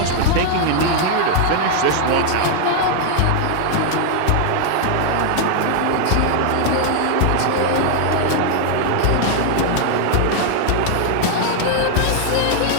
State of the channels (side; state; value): both; different; correlation 0.00